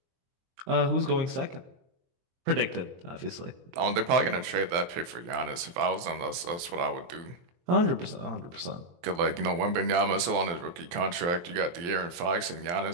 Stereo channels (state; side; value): late; left; 23 ms